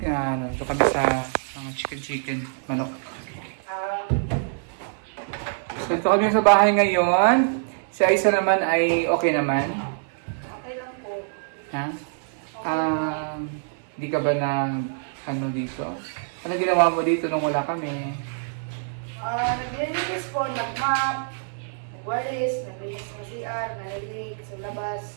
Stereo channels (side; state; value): left; silent; 62 dB below the other